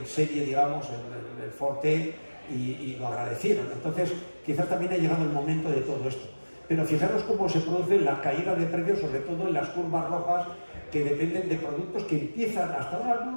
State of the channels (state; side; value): inverted; both; correlation -1.00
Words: serie, digamos, el Ford T, y lo agradecieron. Entonces, quizás también ha llegado el momento de todo esto. Pero fijaros cómo se produce la caída de precios, sobre todo en las curvas rojas, que dependen de productos que empiezan, hasta ahora